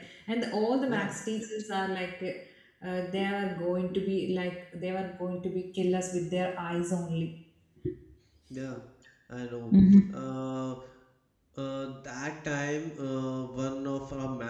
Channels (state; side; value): identical; both; correlation 1.00